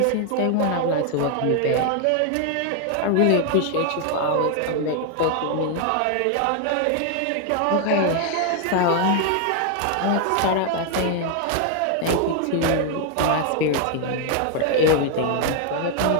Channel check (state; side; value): different; both; correlation 0.00